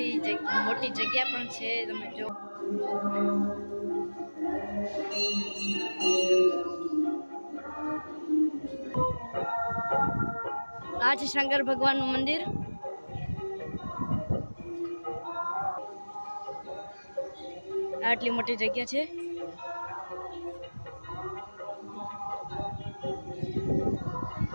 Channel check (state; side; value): inverted; both; correlation -1.00